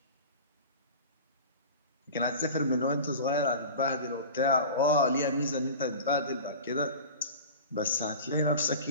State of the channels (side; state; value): both; inverted; correlation -0.35